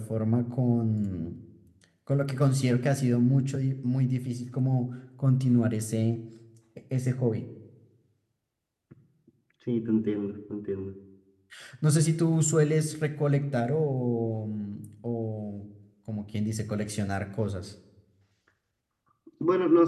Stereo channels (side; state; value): both; identical; correlation 1.00